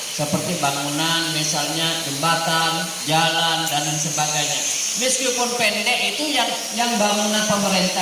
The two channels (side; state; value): both; identical; correlation 1.00